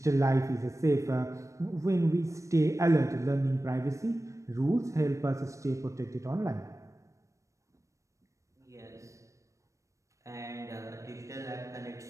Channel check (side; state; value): left; late; 0.15 ms